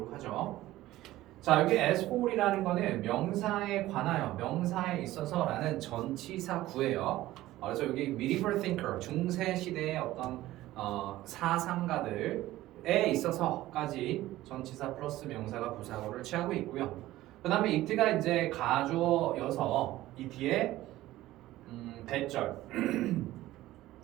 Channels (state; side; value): quieter; left; 16.0 dB